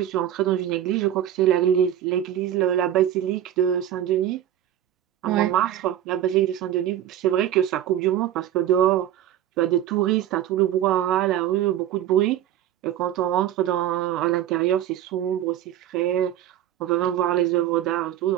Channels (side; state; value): left; quieter; 11.5 dB